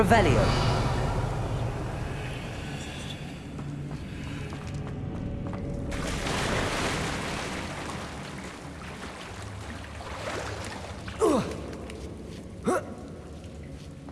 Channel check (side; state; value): both; identical; correlation 1.00